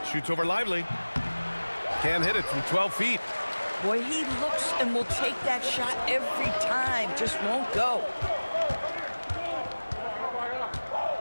Shoots over Lively. Can't hit it from 12 feet. Boy, he looks and will take that shot every time. Just won't go.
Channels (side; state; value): both; inverted; correlation -1.00